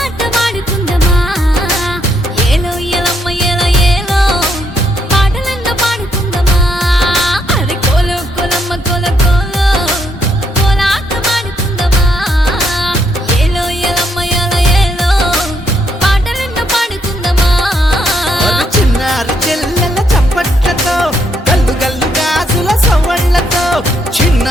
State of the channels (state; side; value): normal; both; correlation 0.75